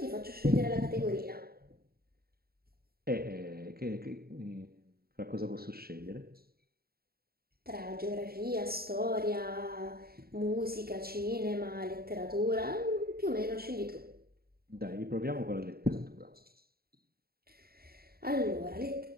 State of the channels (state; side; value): late; left; 0.45 ms